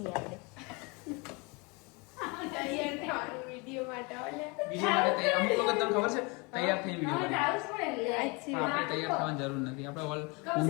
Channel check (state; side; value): quieter; right; 28.6 dB